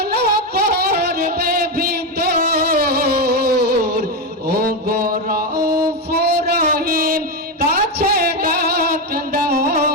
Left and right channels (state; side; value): normal; both; correlation 0.10